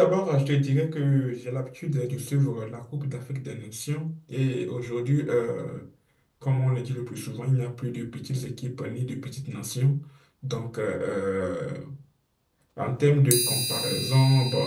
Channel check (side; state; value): both; identical; correlation 1.00